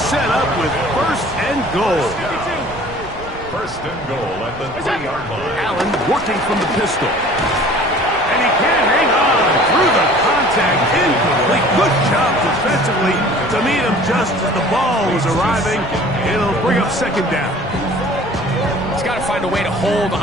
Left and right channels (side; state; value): right; noise; rumble, 16 dB below the sound